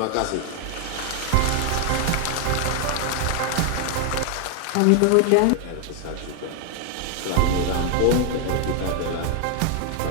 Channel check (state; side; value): different; both; correlation 0.00